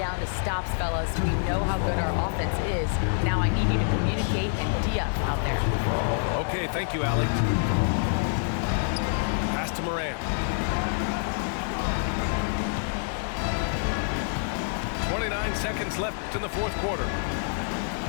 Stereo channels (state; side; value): silent; right; digital silence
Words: to stops, fellas. We know how good our offense is. Now I need you to communicate and D-up out there." Okay, thank you, Allie. Pass to Morant. 29 seconds left in the fourth quarter.